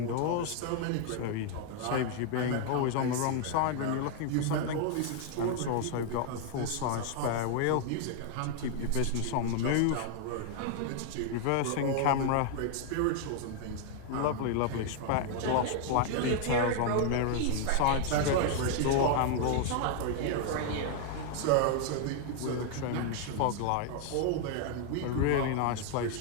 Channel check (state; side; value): different; both; correlation 0.00